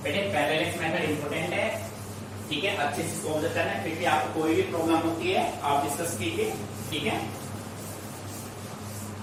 बेटे पैरेलल मेथड इंपॉर्टेंट है, ठीक है, अच्छे से इसको ऑब्जर्व करना है। फिर भी आपको कोई भी प्रॉब्लम होती है आप डिस्कस कीजिए, ठीक है।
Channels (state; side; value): identical; both; correlation 1.00